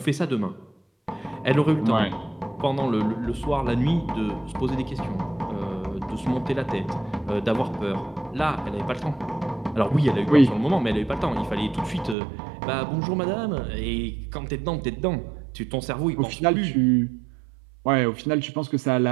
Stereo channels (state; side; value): drops out; left; at 12.2 s